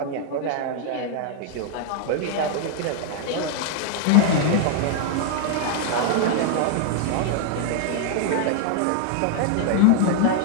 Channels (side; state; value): both; different; correlation 0.00